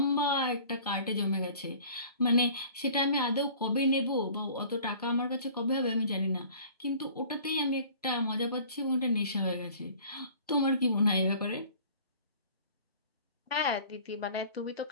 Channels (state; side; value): inverted; both; correlation -0.48